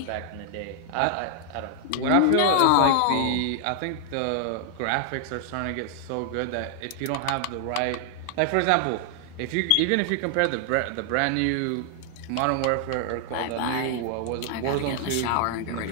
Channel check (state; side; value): different; both; correlation 0.00